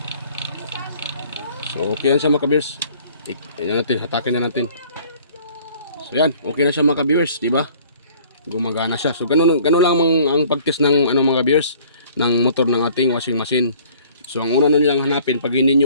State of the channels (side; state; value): both; inverted; correlation -0.54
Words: So okay yan siya mga ka-viewers. Yan natin, hatakin na natin. So yan, okay na siya mga ka-viewers, di ba? Gumagana siya. So ganun lang ang pag-test ng ano mga ka-viewers ng motor ng ating washing machine. So ang una nilang hanapin pag hindi